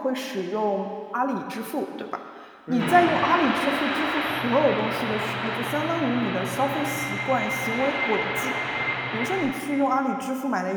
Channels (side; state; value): both; identical; correlation 1.00